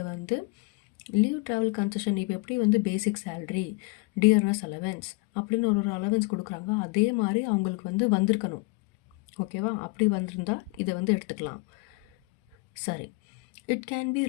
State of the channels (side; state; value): right; quieter; 25.7 dB